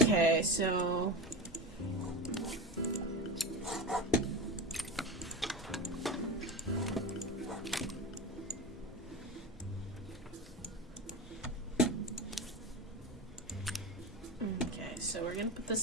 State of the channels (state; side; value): normal; both; correlation 0.25